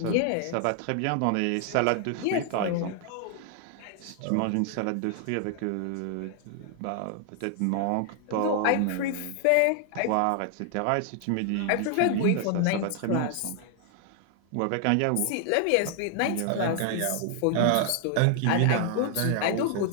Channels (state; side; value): different; both; correlation 0.00